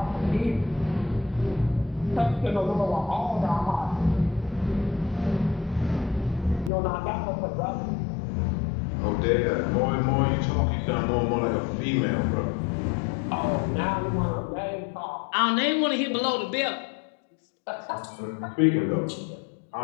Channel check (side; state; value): right; drops out; at 6.7 s